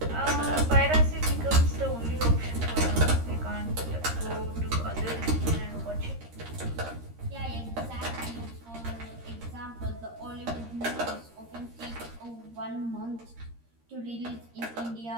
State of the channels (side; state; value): left; late; 13 ms